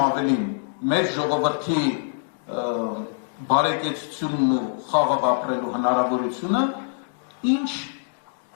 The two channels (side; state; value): right; silent; digital silence